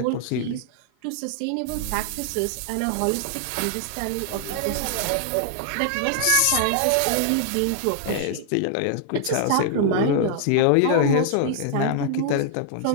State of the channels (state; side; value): different; both; correlation -0.01